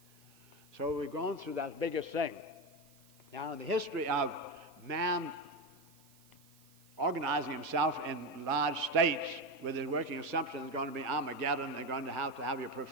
So we've gone through that biggest thing. Now, in the history of man organizing himself in large states with his working assumption there's going to be Armageddon, they're going to have your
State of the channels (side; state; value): right; noise; hiss, 27 dB below the sound